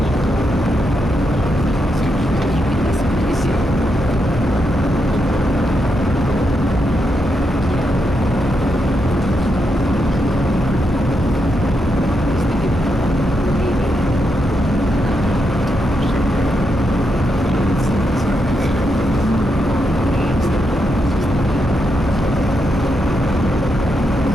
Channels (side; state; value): both; normal; correlation 0.83